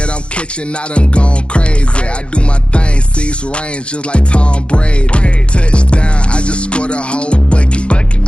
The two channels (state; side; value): late; right; 0.058 ms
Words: I'm catching, I done gone crazy. I do my thing, 6 range, just like Tom Brady. Touchdown, I just scored a whole bucket.